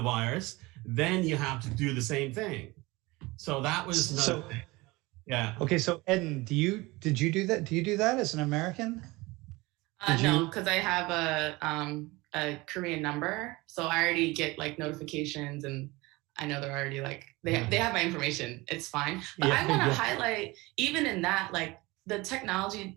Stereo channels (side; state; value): left; quieter; 22.3 dB